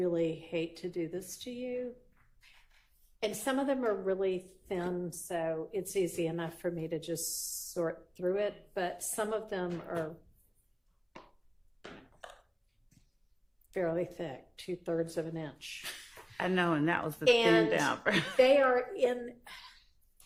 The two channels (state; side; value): identical; both; correlation 1.00